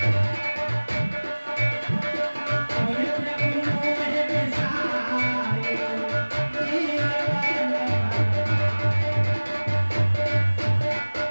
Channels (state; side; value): inverted; both; correlation -1.00